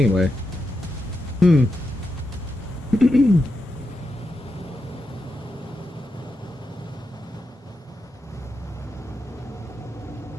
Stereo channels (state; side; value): normal; both; correlation 0.87